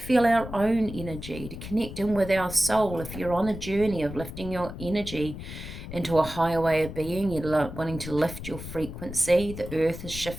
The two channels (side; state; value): left; noise; rumble, 10 dB below the sound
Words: our own energy, to connect in with our soul. If you're on a journey of lifting your energy into a higher way of being, you're wanting to lift your frequency, the earth is